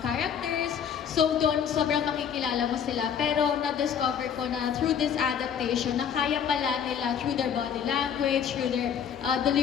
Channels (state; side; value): quieter; right; 8.0 dB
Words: characters. So, doon sobrang makikilala mo sila. Pero na-discover ko na through this adaptation, na kaya pala nila through their body language, through their